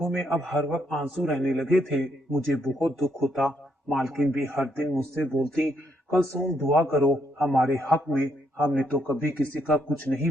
में अब हर वक्त आंसू रहने लगे थे। मुझे बहुत दुख होता। मालकिन भी हर दिन मुझसे बोलती, कलसूम दुआ करो हमारे हक में, हमने तो कभी किसी का कुछ नहीं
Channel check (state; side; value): normal; both; correlation 0.74